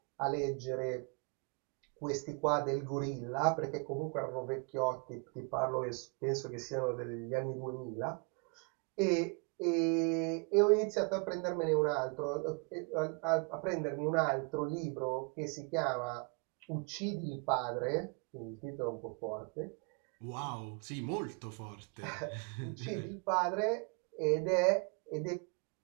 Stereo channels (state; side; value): quieter; left; 35.1 dB